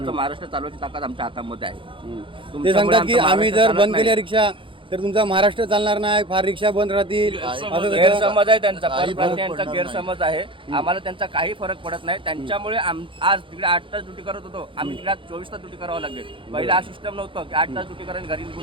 महाराष्ट्र चालवायची ताकद आमच्या हातामध्ये आहे. ते सांगतात की आम्ही जर बंद केल्या रिक्षा तर तुमचा महाराष्ट्र चालणार नाही, फार रिक्षा बंद राहतील. गैरसमज आहे त्यांचा, परप्रांतीयांचा गैरसमज आहे. आम्हाला त्यांचा काही फरक पडत नाही. त्यांच्यामुळे आज तिकडे 8 तास ड्युटी करत होतो, आम्ही तिकडे 24 तास ड्युटी करावं लागले. पहिला हा सिस्टम नव्हतं की 8 तास ड्युटी करायला घरी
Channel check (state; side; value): late; left; 0.25 ms